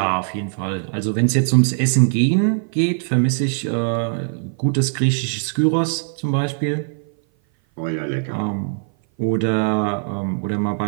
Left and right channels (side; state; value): left; silent; 57 dB below the other